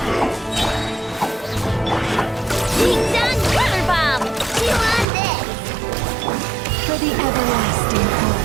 Ding dong water bomb! Chew on this! For the everlasting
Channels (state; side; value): drops out; left; at 5.1 s